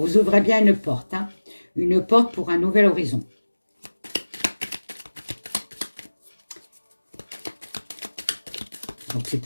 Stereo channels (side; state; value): both; inverted; correlation -1.00